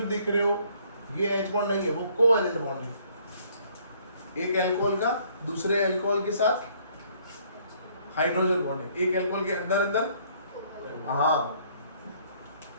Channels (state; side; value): inverted; both; correlation -0.63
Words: दिख रहे हो ये H बॉन्ड नहीं है, वो कोवेलेंट बॉन्ड है। एक अल्कोहल का दूसरे अल्कोहल के साथ हाइड्रोजन बॉन्ड है, एक अल्कोहल के अंदर अंदर। हाँ,